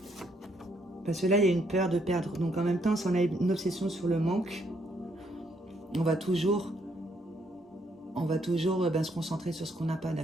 Parce que là, il y a une peur de perdre. Donc en même temps, si on a une obsession sur le manque, on va toujours se concentrer sur ce qu'on n'a pas,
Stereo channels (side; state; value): both; normal; correlation 0.72